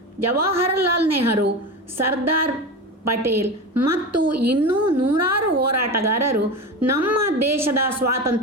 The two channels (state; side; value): normal; both; correlation 0.24